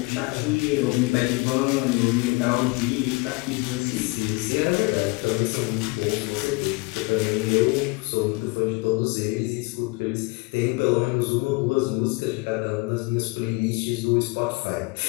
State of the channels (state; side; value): quieter; right; 27.0 dB